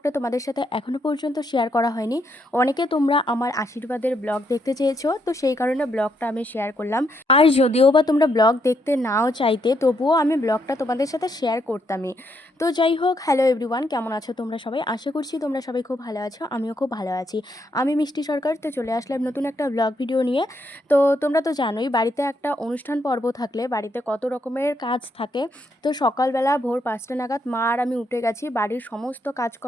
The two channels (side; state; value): both; normal; correlation 0.76